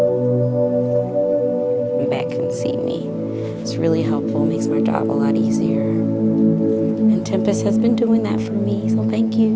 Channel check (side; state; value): both; identical; correlation 1.00